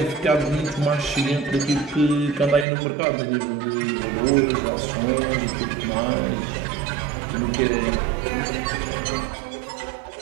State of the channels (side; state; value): left; drops out; at 2.7 s